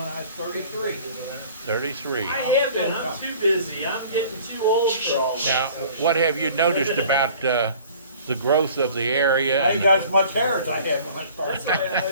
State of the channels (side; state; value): both; inverted; correlation -0.49